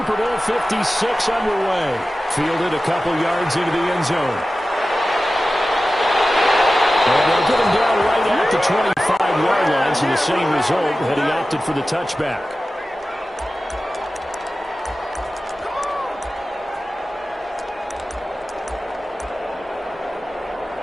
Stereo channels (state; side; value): normal; both; correlation 0.95